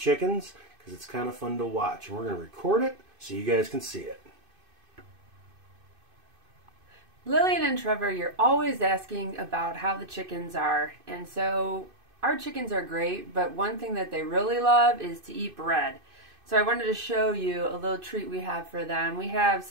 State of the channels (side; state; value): left; late; 2.5 ms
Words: because it's kind of fun to watch. And we're going to record it so you guys can see it. Lillian and Trevor, you're always asking about how the chickens are. And so our chickens are great, but one thing that they really love is to eat bread. So I wanted to show you a little treat we have for them. We have